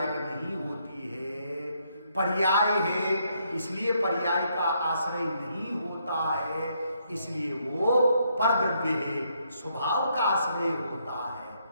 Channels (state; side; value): inverted; both; correlation -0.74